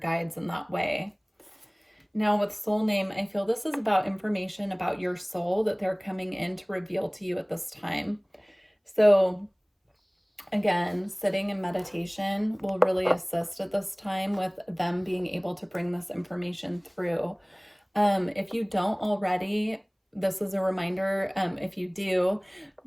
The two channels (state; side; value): identical; both; correlation 1.00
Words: in that way. Now with soul name, I feel this is about information about your soul that they're coming in to reveal to you at this time. So again, sitting in meditation will really assist at this time with them being able to bring this information through. If you don't already, this is a reminder, if you do,